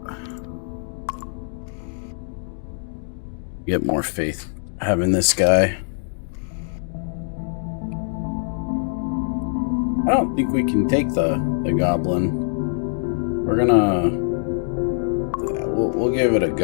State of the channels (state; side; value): silent; right; digital silence